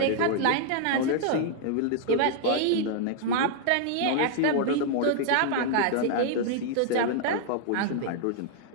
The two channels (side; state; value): both; different; correlation 0.00